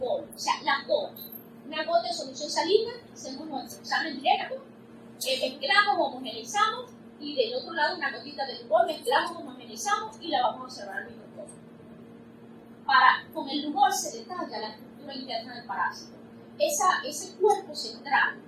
o sea, las gotas. Una gota de solución salina, hacemos nuestro examen directo, mezclamos, homogeneizamos y del otro lado una gotita de Lugol, mezclamos, homogeneizamos y la vamos a observar al microscopio. Con el Lugol se detalla la estructura interna del parásito. Ese cuerpo central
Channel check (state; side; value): identical; both; correlation 1.00